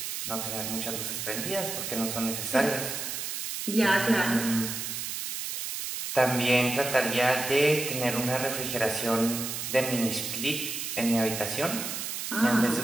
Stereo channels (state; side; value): noise; right; hiss, 4 dB below the sound